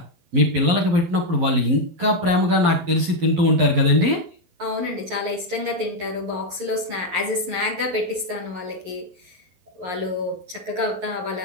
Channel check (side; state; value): left; late; 11 ms